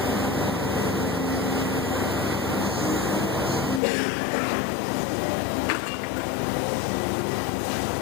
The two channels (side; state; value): right; drops out; at 3.8 s